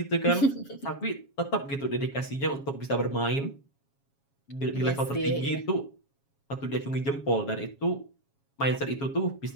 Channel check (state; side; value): late; right; 7.3 ms